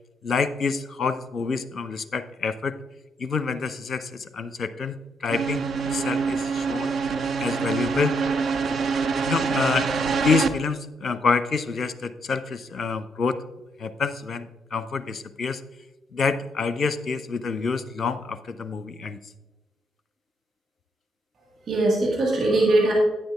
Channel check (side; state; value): both; normal; correlation 0.76